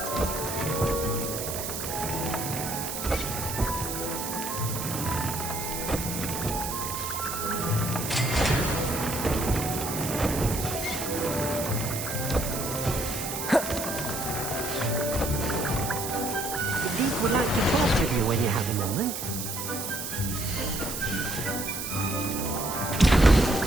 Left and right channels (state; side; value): noise; right; hiss, 5 dB below the sound